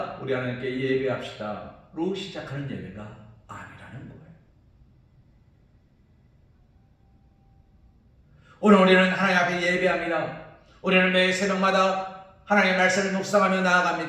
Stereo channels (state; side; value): identical; both; correlation 1.00